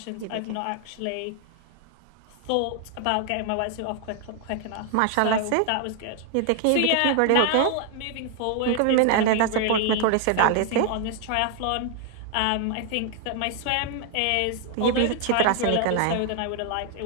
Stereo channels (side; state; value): both; different; correlation 0.00